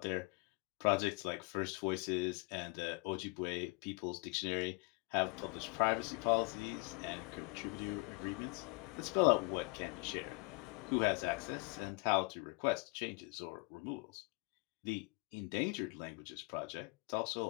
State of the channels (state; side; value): quieter; right; 28.0 dB